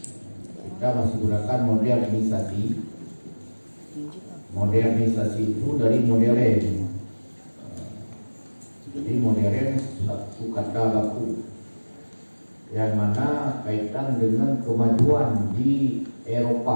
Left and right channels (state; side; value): inverted; both; correlation -1.00